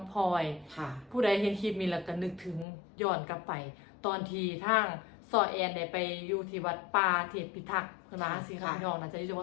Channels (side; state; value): right; drops out; at 2.7 s